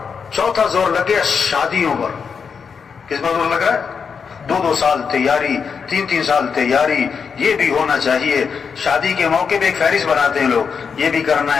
چوتھا زور لگ گیا شادیوں پر. کس پر زور لگ رہا ہے؟ 2 سال تیاری، 3 سال تیاری. یہ بھی ہونا چاہیے. شادی کے موقع پہ ایک فہرست بناتے ہیں لوگ، یہ بھی کرنا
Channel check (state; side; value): quieter; right; 6.1 dB